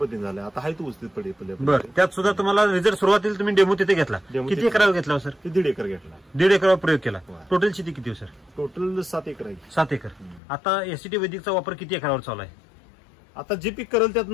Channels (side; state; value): right; drops out; at 10.4 s